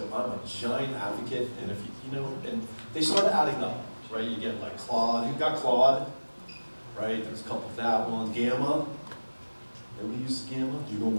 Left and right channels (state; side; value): inverted; both; correlation -1.00